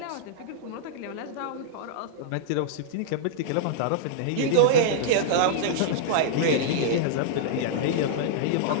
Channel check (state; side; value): different; both; correlation -0.02